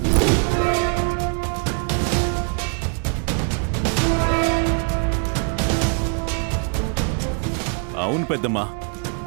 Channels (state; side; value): quieter; left; 39.8 dB